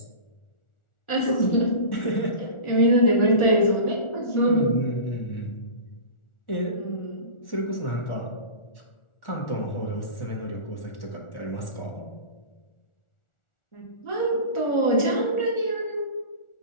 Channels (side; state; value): right; late; 1.4 ms